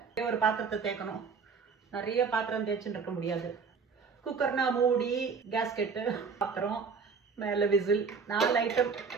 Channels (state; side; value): quieter; left; 5.4 dB